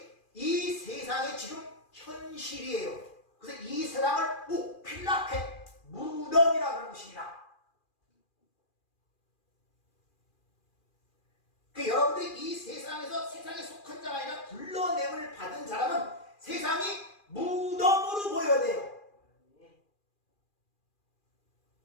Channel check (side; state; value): right; late; 2.4 ms